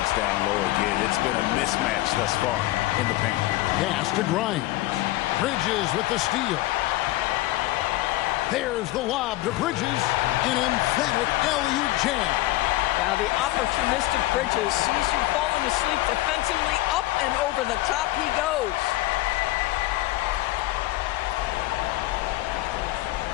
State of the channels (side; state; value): right; quieter; 17.5 dB